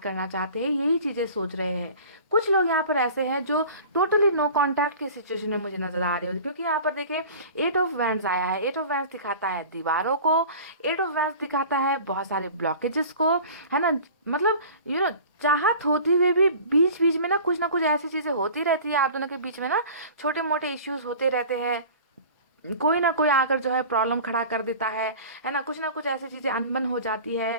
करना चाहते हैं, यही चीजें सोच रहे हैं। कुछ लोग यहाँ पर ऐसे हैं जो टोटली नो कांटेक्ट की सिचुएशन में मुझे नजर आ रहे हो, क्योंकि यहाँ पर देखें 8 ऑफ वैंड्स आया है। 8 ऑफ वैंड्स दिखाता है दीवारों को, 8 ऑफ वैंड्स दिखाता है बहुत सारे ब्लॉकेजेस को, है ना। मतलब चाहत होती हुए भी बीच बीच में ना कुछ ऐसी चीजें होती रहती है आप दोनों के बीच में ना, छोटे मोटे इश्यूज होते रहते हैं। कोई ना कोई आकर जो है प्रॉब्लम खड़ा कर देता है ना कुछ ऐसी चीजें अनबन हो जाती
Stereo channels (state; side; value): inverted; both; correlation -0.41